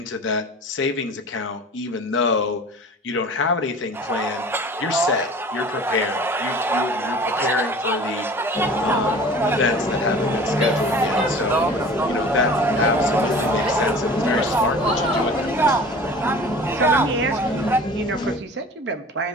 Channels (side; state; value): both; normal; correlation 0.42